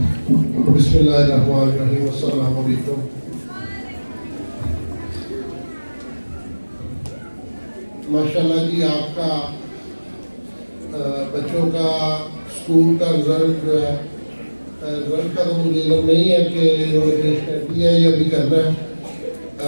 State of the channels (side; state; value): both; inverted; correlation -1.00